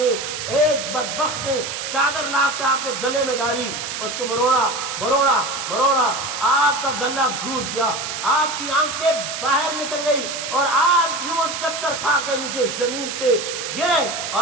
ایک بدبخت نے چادر لا کے آپ کے گلے میں ڈالی، اس کو مروڑا مروڑا مروڑا، آپ کا گلا گھوٹ گیا، آپ کی آنکھیں باہر نکل گئی اور آپ یوں چکر کھا کے نیچے زمین پہ گرے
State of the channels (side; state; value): right; noise; hiss, 5 dB below the sound